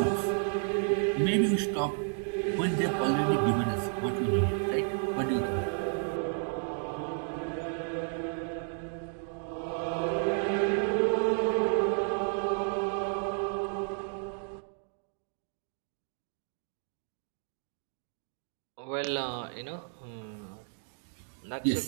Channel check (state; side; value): silent; left; 56 dB below the other